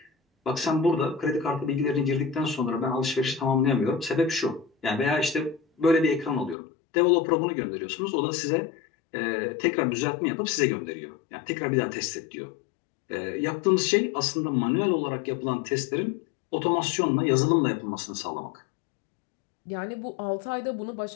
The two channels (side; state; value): right; drops out; at 6.6 s